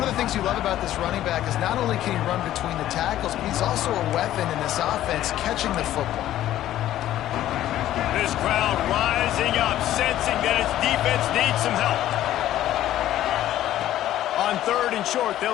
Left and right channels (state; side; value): quieter; right; 13.1 dB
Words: of the things you love about this running back is not only can he run between the tackles, but he's also a weapon in this offense catching the football. This crowd rising up, sensing that its defense needs some help. On third and short,